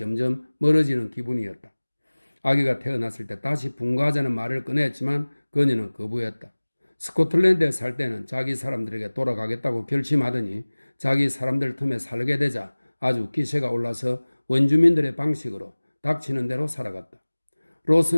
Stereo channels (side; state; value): both; inverted; correlation -1.00